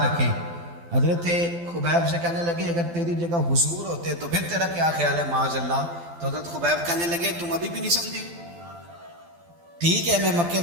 رکھیں. حضرت خبیب سے کہنے لگے اگر تیری جگہ حضور ہوتے تو پھر تیرا کیا خیال ہے معاذ اللہ؟ تو حضرت خبیب کہنے لگے تم ابھی بھی نہیں سمجھے. ٹھیک ہے میں مکے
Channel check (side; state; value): left; late; 12 ms